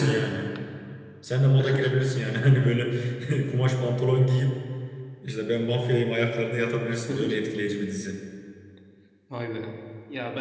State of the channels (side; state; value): both; identical; correlation 1.00